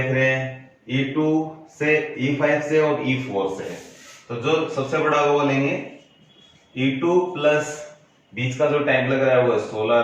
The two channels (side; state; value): both; identical; correlation 1.00